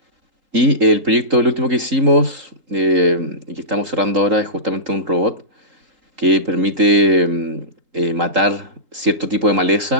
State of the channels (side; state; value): left; late; 3.8 ms